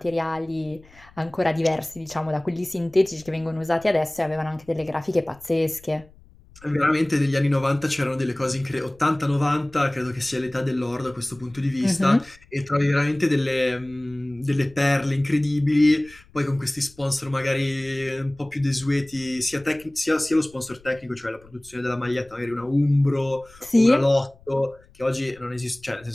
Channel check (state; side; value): noise; left; rumble, 26 dB below the sound